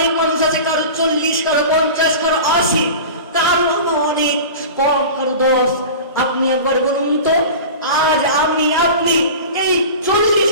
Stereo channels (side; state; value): both; inverted; correlation -0.34